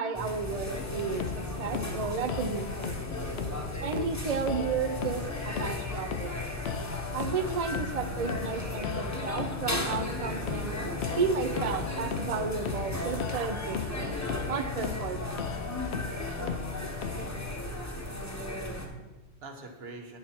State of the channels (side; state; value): both; normal; correlation -0.01